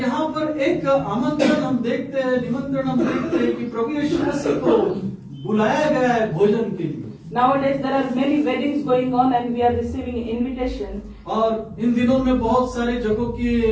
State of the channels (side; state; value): both; identical; correlation 1.00